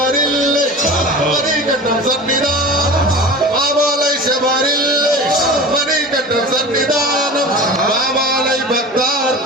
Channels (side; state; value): both; normal; correlation 0.35